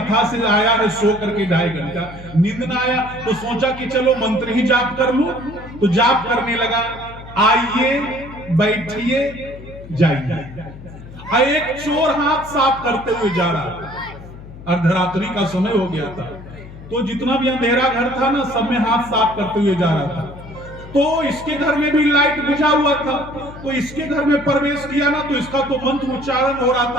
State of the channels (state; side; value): noise; left; hum, 16 dB below the sound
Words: से आया है, सो करके 2.5 घंटा, नींद ना आया। तो सोचा कि चलो मंत्र ही जाप कर लूं। तो जाप करने लगा, आइए बैठिए जाइए। एक चोर हाथ साफ करते हुए जा रहा था, अर्धरात्रि का समय हो गया था। तो जितना भी अंधेरा घर था ना, सब में हाथ साफ करते हुए जा रहा था। तो इसके घर में भी लाइट बुझा हुआ था। तो इसके घर में प्रवेश किया ना, तो इसका तो मंत्र उच्चारण हो रहा